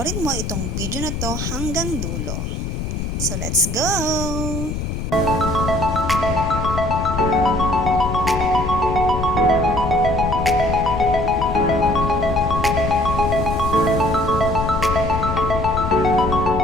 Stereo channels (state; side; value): noise; left; rumble, 4 dB below the sound